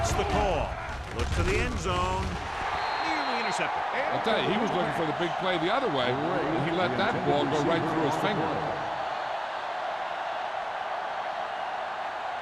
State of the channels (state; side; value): identical; both; correlation 1.00